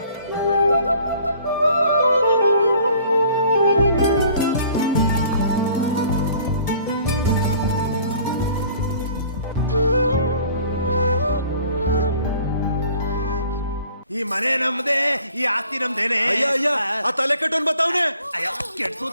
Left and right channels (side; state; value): both; inverted; correlation -0.54